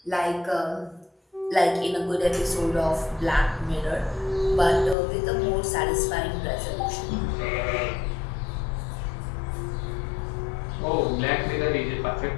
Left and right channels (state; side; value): drops out; right; at 5.0 s